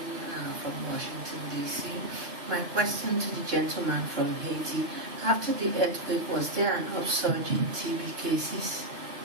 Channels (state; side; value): late; left; 2.9 ms